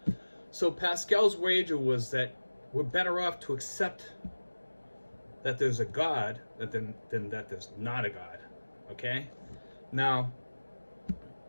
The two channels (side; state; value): both; inverted; correlation -1.00